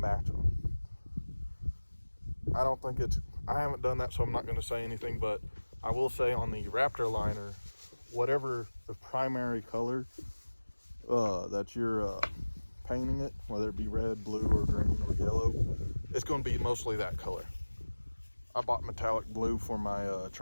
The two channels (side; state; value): both; inverted; correlation -1.00